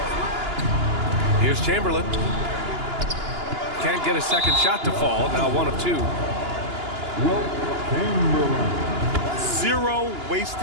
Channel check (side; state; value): left; late; 2.9 ms